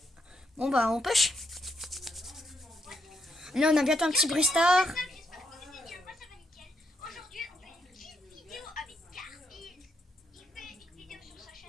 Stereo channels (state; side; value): normal; both; correlation 0.77